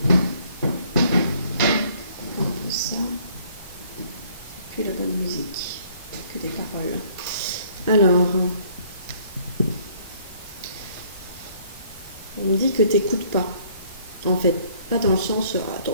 un peu ça, puis la bonne musique, que des paroles. Alors, on me dit que tu n'écoutes pas, en fait, pas dans le sens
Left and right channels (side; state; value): both; inverted; correlation -0.61